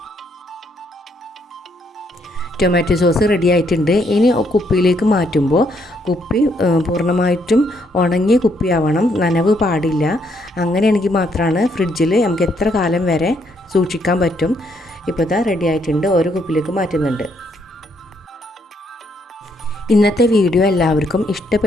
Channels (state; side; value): normal; both; correlation 0.72